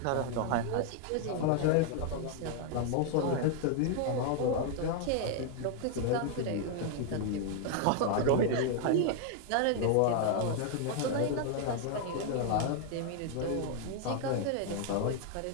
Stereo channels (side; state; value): both; different; correlation 0.00